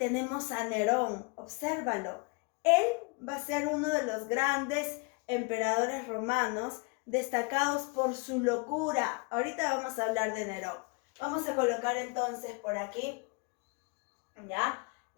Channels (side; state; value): right; quieter; 31.4 dB